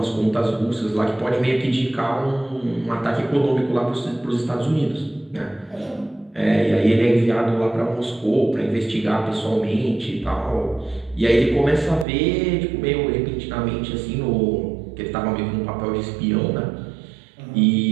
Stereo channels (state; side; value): drops out; left; at 12.1 s